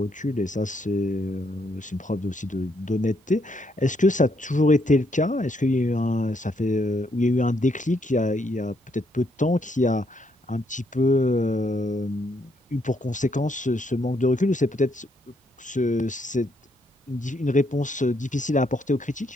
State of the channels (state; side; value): normal; both; correlation 0.74